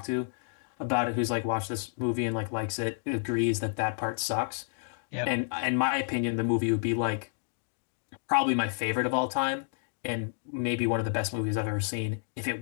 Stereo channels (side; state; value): right; silent; digital silence